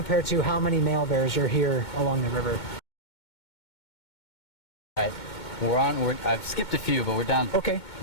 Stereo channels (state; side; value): late; right; 2.2 ms